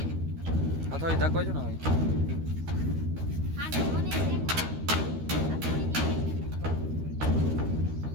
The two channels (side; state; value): left; late; 13 ms